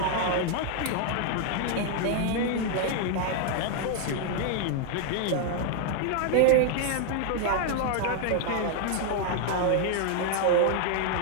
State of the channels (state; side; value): different; both; correlation 0.00